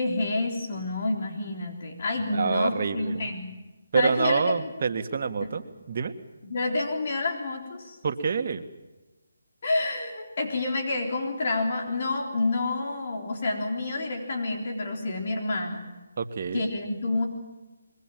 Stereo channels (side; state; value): both; inverted; correlation -0.82